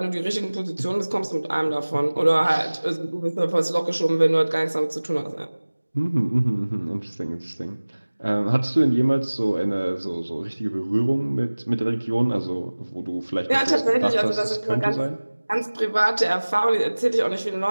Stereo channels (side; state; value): both; inverted; correlation -1.00